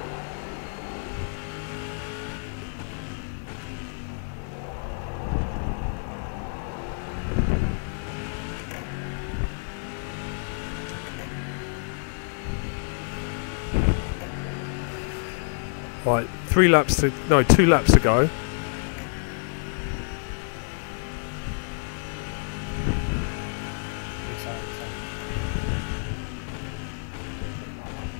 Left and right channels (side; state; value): right; silent; digital silence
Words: Right, 2 laps to go.